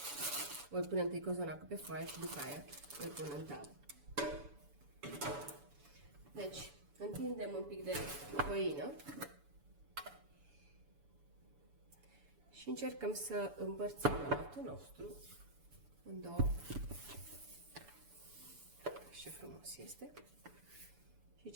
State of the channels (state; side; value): late; left; 7.0 ms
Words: voi pune întâi cozonacul pe foaie și după aia îl pun în tavă. Deci, întindem un pic de făină și încercăm să împărțim aluatul nostru în două. Ce frumos este și